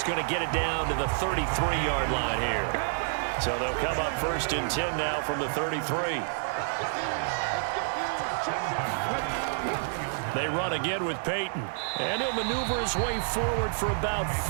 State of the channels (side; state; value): left; silent; digital silence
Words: going to get it down to the 33-yard line here. So they'll come up first and 10 now from the 33. They run again with Peyton. And he'll maneuver his way forward for about